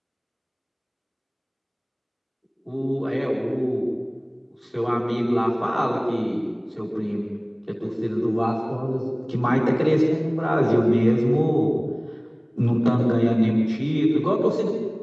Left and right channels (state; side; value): identical; both; correlation 1.00